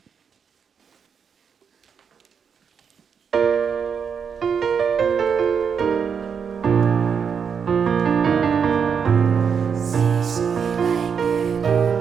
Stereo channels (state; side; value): quieter; left; 6.7 dB